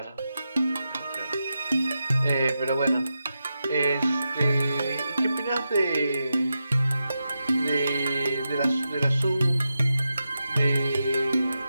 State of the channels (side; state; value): both; inverted; correlation -0.89